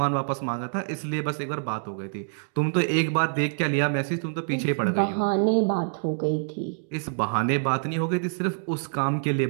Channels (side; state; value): left; silent; digital silence